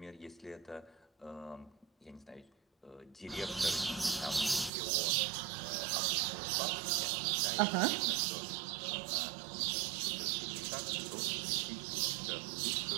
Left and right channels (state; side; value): drops out; left; at 4.7 s